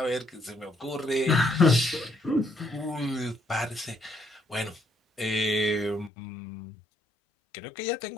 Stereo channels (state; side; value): drops out; right; at 6.1 s